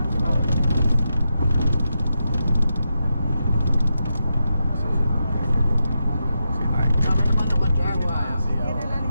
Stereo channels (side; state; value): both; inverted; correlation -0.87